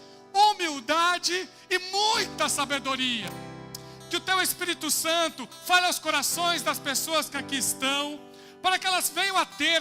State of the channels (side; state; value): both; identical; correlation 1.00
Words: humildade e muita sabedoria. Que o teu Espírito Santo fale aos corações das pessoas que aqui estão, para que elas venham a